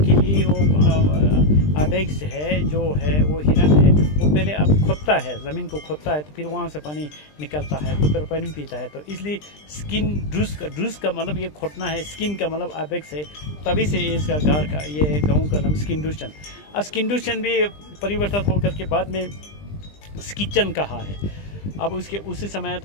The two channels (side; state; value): right; late; 20 ms